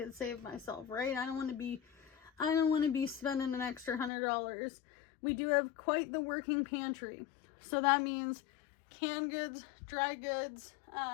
save myself, right? I don't want to be spending an extra $100. We do have quite the working pantry. So that means canned goods, dry goods,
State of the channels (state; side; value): drops out; right; at 4.1 s